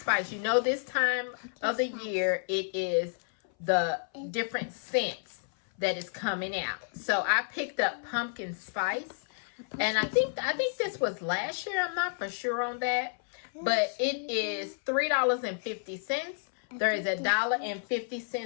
You know, this time of the year, it is the different scents that is coming out. So I picked up Pumpkin Spice, and I think this was last year. I'm not for sure on that, but it is $3.50. There is a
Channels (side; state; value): right; silent; 57 dB below the other